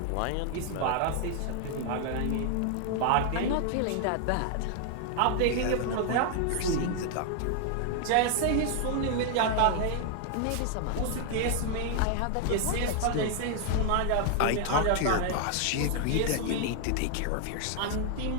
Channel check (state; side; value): different; both; correlation 0.00